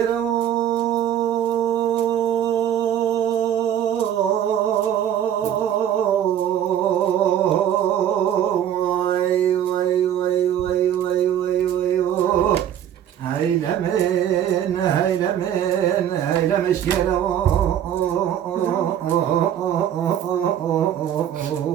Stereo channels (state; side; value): quieter; left; 10.2 dB